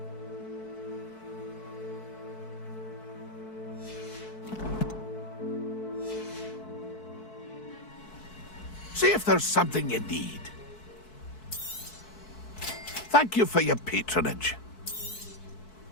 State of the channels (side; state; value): right; late; 4.6 ms